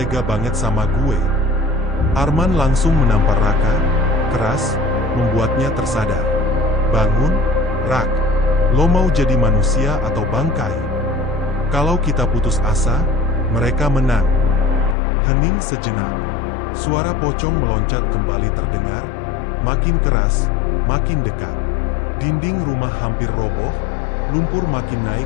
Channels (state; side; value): drops out; right; at 15.0 s